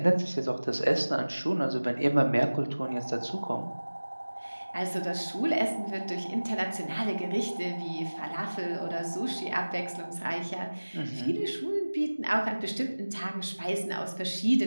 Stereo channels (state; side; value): inverted; both; correlation -1.00